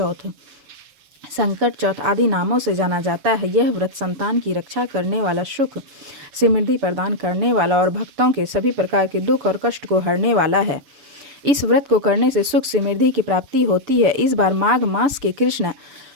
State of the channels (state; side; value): late; left; 6.9 ms